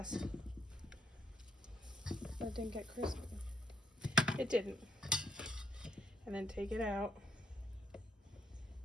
That didn't get crispy. It didn't. And then take it out.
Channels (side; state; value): both; normal; correlation 0.73